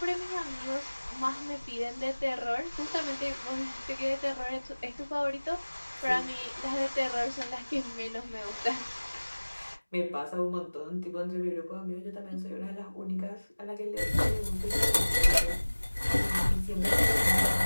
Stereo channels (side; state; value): both; inverted; correlation -1.00